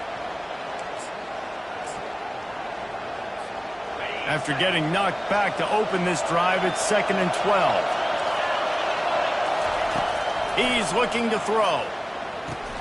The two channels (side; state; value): both; identical; correlation 1.00